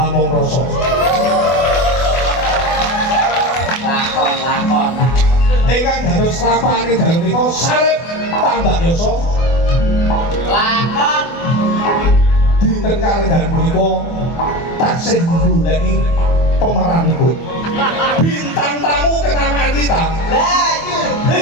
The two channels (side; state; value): right; late; 24 ms